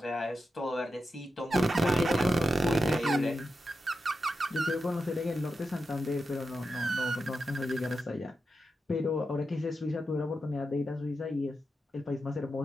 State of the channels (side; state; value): both; normal; correlation 0.88